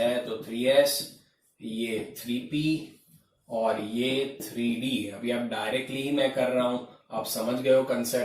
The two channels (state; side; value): identical; both; correlation 1.00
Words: तो 3s, ये 3p और ये 3d। अभी आप डायरेक्टली ही मैं कर रहा हूं, आप समझ गए हो